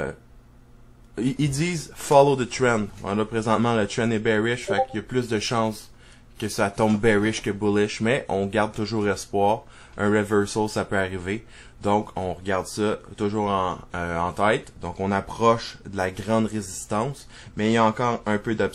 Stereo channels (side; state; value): both; identical; correlation 1.00